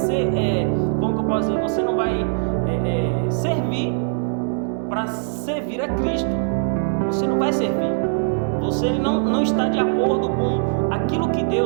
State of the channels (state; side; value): silent; left; 65 dB below the other